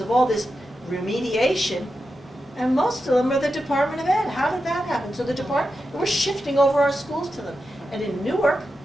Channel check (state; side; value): normal; both; correlation 0.89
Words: all this remediation, and most of them are the Department of Ed. How did that happen? So we're shifting over our schools to them. And in Newark,